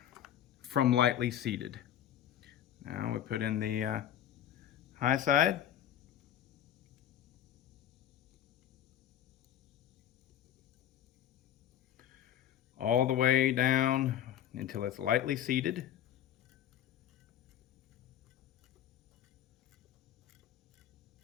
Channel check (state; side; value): quieter; right; 10.8 dB